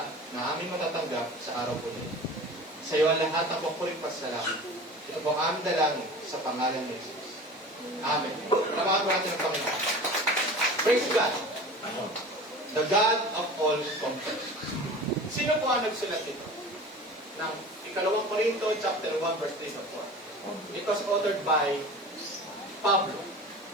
na aming matatanggap sa araw po nito. Sa iyo ang lahat ang papuring pasalamat. Ito po ang aming dalangin sa pangalan ni Jesus. Amen. Palawakan po natin ang Panginoon. Praise God. The God of all comfort. Sino po ang nagsulat ito? Ng Ikalawang Korinto, chapter 1, verse 3 to 4. It was authored by Pablo,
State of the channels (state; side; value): normal; both; correlation 0.38